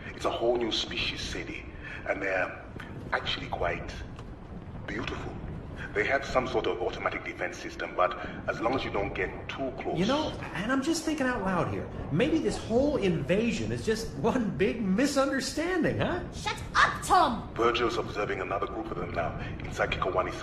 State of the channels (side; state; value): both; identical; correlation 1.00